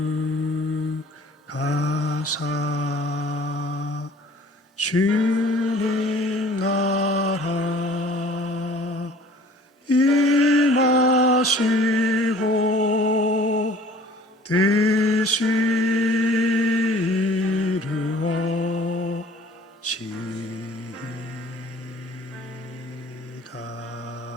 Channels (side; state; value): both; normal; correlation 0.50